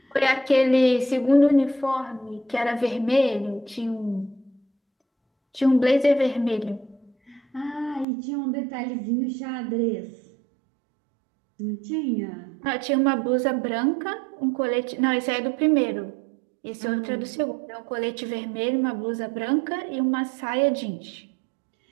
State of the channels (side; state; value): left; drops out; at 8.1 s